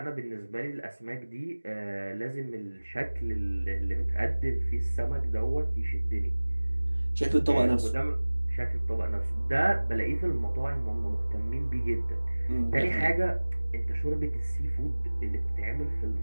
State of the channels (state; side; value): inverted; both; correlation -1.00